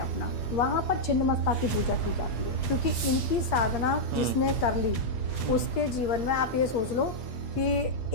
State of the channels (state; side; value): late; right; 8.5 ms